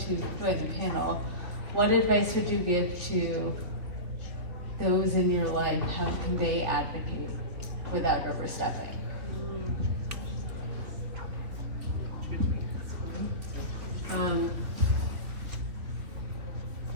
doing the panel. What advice would you give to those in your life? How can they advocate without overstepping?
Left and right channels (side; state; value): left; late; 3.3 ms